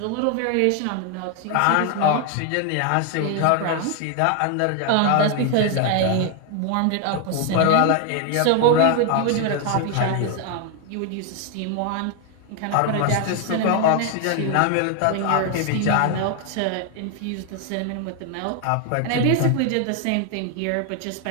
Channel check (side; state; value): both; different; correlation 0.00